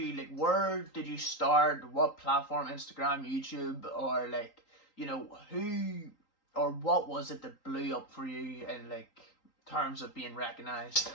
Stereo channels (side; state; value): right; late; 3.8 ms